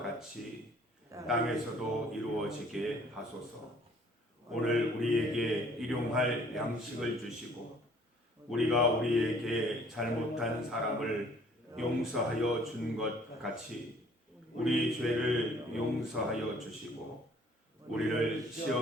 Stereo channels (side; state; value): both; normal; correlation 0.57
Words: 땅에서도 이루어지게 하소서. 오늘 우리에게 일용할 양식을 주시고 우리가 우리에게 잘못한 사람을 용서하여 준 것 같이 우리 죄를 용서하여 주시고 우리를